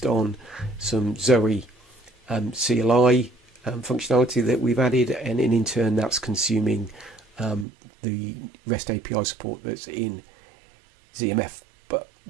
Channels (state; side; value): drops out; left; at 7.7 s